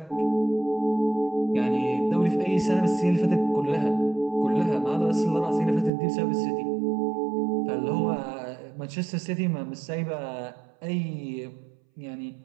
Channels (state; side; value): drops out; left; at 5.9 s